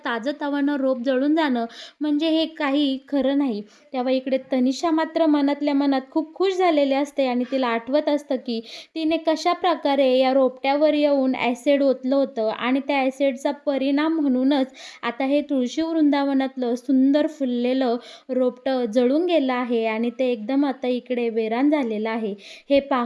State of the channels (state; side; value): identical; both; correlation 1.00